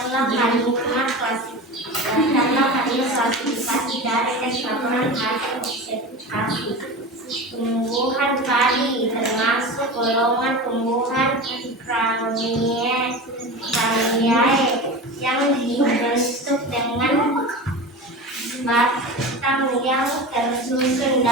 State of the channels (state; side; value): normal; both; correlation 0.29